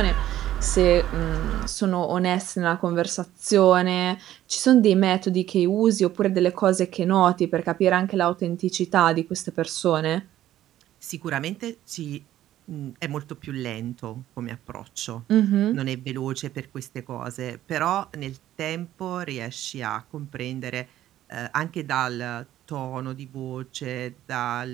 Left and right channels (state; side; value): quieter; left; 13.0 dB